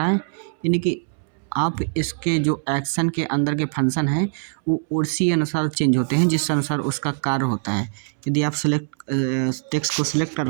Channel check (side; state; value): left; silent; 64 dB below the other